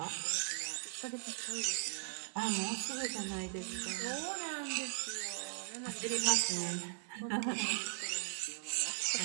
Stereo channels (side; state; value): left; silent; digital silence